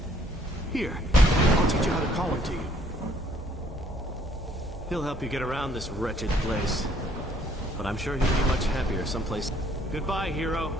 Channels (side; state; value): both; normal; correlation 0.63